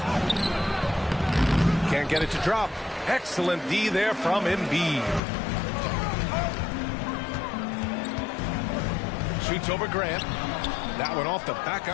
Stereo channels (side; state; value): right; drops out; at 5.2 s